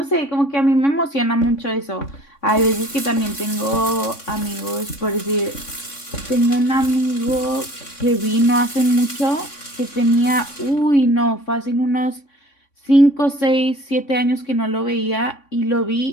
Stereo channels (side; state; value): right; late; 3.6 ms